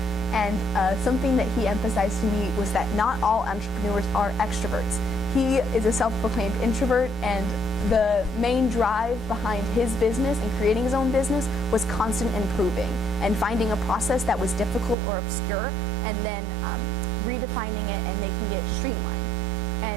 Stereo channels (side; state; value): left; drops out; at 15.0 s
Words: and something that he emphasized to me was that not all entrepreneurs are extroverts. He is a self-proclaimed introvert, and the main drive behind his business and creating his own business was constant improving and finding a process that was difficult or obscure, and then redefining it and making it streamlined.